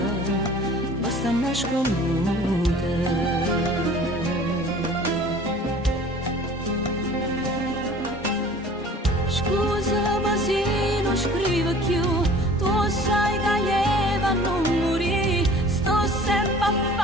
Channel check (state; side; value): normal; both; correlation 0.47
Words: basta nasconuta. Scusami se non scrivo più, tu sai che io non morì, sto sempre a